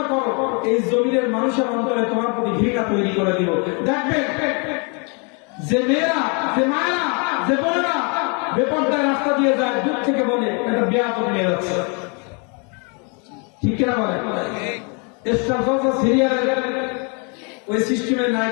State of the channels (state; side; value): quieter; right; 34.8 dB